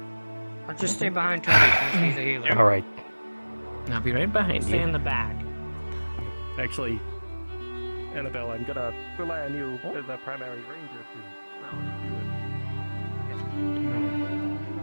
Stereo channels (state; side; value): inverted; both; correlation -1.00